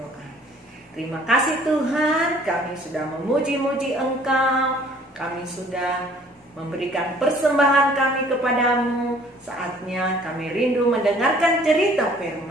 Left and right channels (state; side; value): normal; both; correlation 0.56